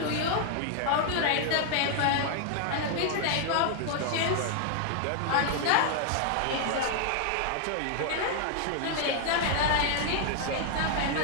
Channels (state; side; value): different; both; correlation 0.00